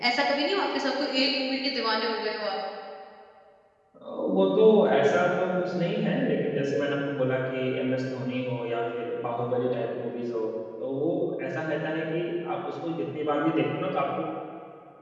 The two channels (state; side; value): identical; both; correlation 1.00